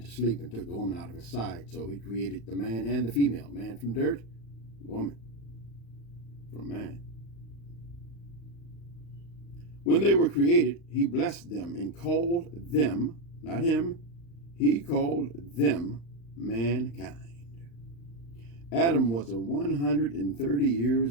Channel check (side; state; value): right; late; 35 ms